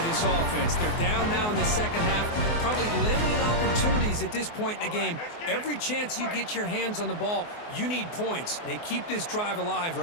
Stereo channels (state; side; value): late; right; 24 ms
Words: this offense. They're down now in the second half. Probably limited opportunities at this point in the game. Every chance you get your hands on the ball, you need points. They keep this drive alive